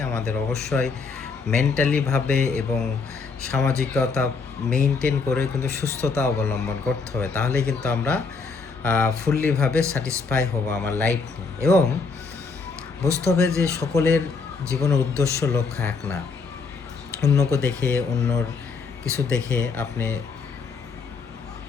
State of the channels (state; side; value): quieter; right; 4.7 dB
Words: আমাদের অবশ্যই মেন্টালি ভাবে এবং সামাজিকতা মেইনটেইন করে কিন্তু সুস্থতা অবলম্বন করতে হবে। তাহলেই কিন্তু আমরা ফুল্লি ভাবে স্যাটিসফাই হব আমার লাইফ নিয়ে। এবং বুঝতে হবে যে সকলের জীবনের উদ্দেশ্য লক্ষ্য এক না। অন্যকে দেখে, অন্যর কিছু দেখে আপনি